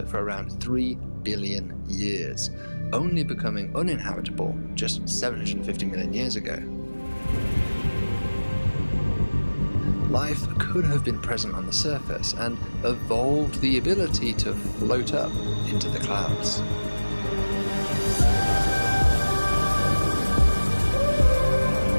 for around 3 billion years, only becoming uninhabitable just 750 million years ago. Life could have been present on the surface and evolved the ability to float up into the clouds.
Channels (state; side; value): inverted; both; correlation -1.00